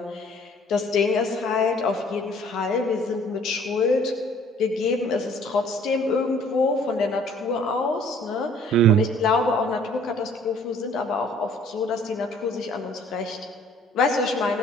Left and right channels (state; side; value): normal; both; correlation 0.55